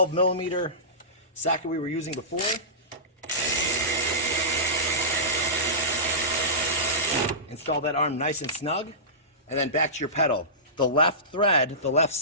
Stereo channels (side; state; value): both; normal; correlation -0.20